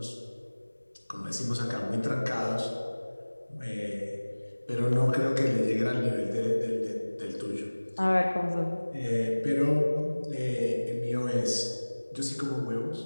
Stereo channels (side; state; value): both; inverted; correlation -1.00